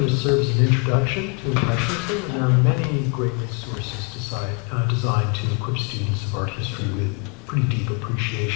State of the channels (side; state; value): right; quieter; 31.2 dB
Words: to serve as an introduction to Impressionism, and there are many great resources designed to equip students of art history with pretty deep